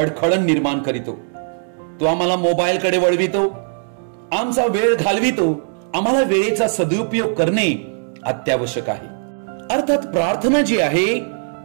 निर्माण करीतो. तो आम्हाला मोबाईल कडे वळवितो, आमचा वेळ घालवितो. आम्हाला वेळेचा सदुपयोग करणे अत्यावश्यक आहे. अर्थात प्रार्थना जी आहे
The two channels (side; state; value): left; silent; digital silence